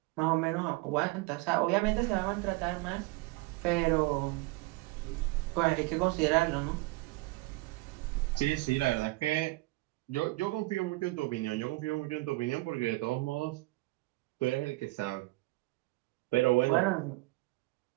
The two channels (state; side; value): quieter; left; 22.2 dB